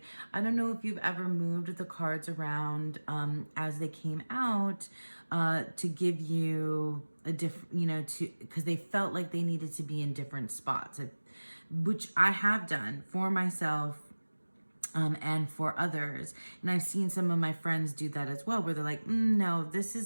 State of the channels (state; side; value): inverted; both; correlation -1.00